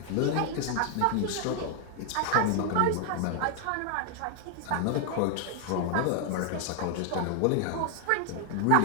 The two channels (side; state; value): both; different; correlation 0.00